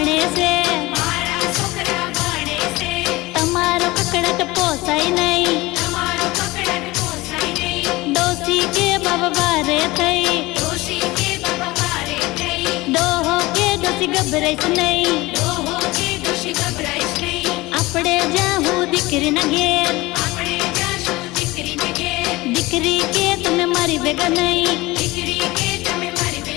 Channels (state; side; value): quieter; right; 20.8 dB